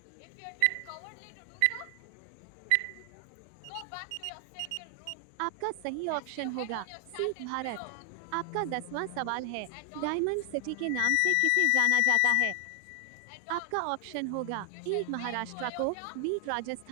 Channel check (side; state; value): both; different; correlation 0.00